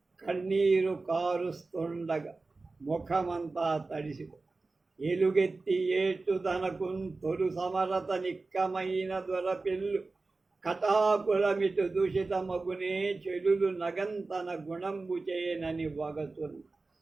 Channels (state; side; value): quieter; left; 3.6 dB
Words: కన్నీరు కారుస్తుండగా ముఖమంతా తడిసి ఎలుగెత్తి ఏటు తనకున్ తొలు సమరత నిక్కమైన దొరపిల్లు కటాకులమిటు దూషితమగునే చెలులు నగంతన గుణంబు చేయనని వగతును.